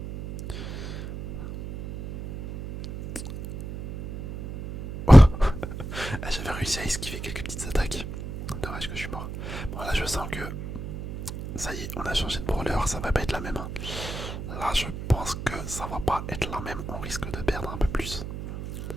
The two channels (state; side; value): noise; right; hum, 8 dB below the sound